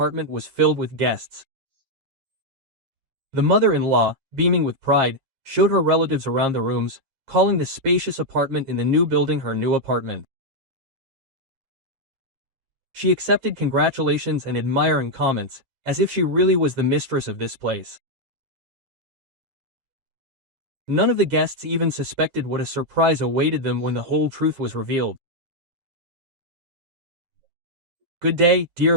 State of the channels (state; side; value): late; left; 9.4 ms